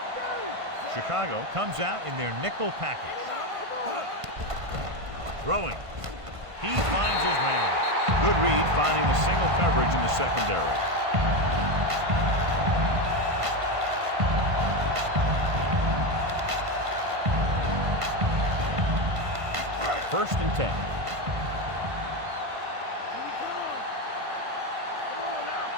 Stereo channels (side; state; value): left; late; 1.5 ms